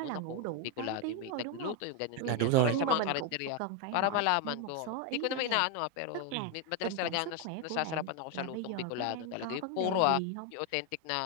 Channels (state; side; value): different; both; correlation 0.01